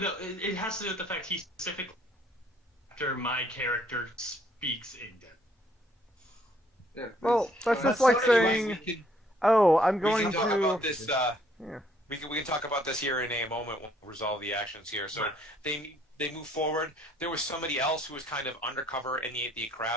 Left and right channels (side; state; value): both; normal; correlation 0.65